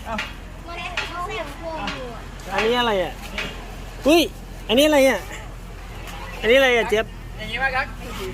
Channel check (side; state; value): both; identical; correlation 1.00